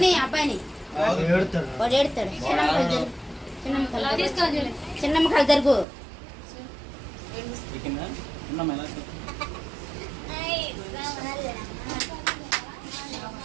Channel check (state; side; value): drops out; left; at 5.9 s